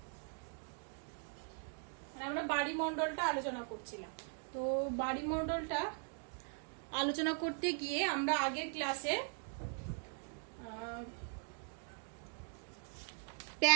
আমরা বাড়িমণ্ডলটা আলোচনা করছিলাম। তো বাড়িমণ্ডলটা আলোচনা করতে গিয়ে আমরা আগের ক্লাসে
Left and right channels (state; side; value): silent; left; 51 dB below the other